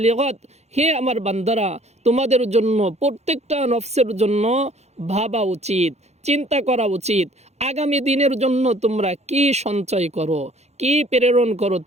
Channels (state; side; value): late; left; 0.32 ms